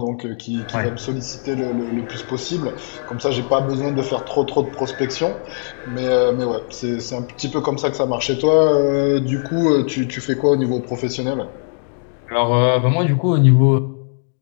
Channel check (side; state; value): right; silent; digital silence